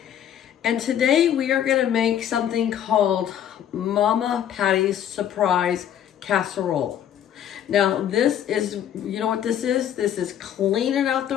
And today we are gonna make something called Mama Patti's Surprise Casserole. Now this is, you know what this is? This is cleaning out the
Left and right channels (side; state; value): right; quieter; 10.0 dB